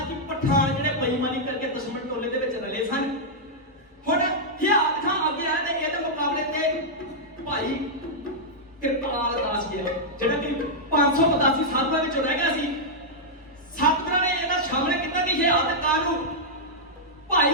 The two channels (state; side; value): normal; both; correlation -0.07